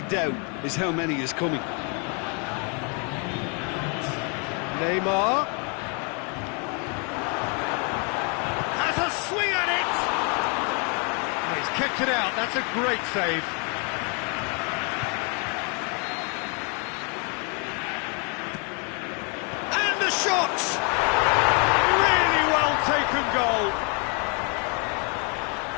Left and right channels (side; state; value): right; quieter; 35.8 dB